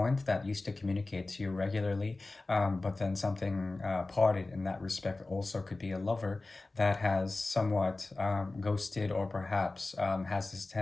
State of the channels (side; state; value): right; quieter; 3.2 dB